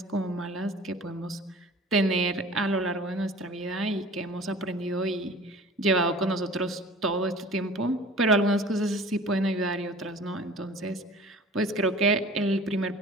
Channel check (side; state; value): both; normal; correlation 0.43